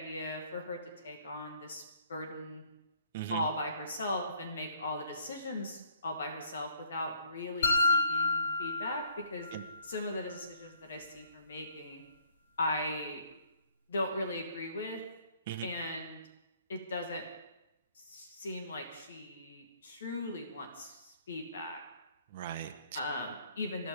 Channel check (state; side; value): inverted; both; correlation -0.62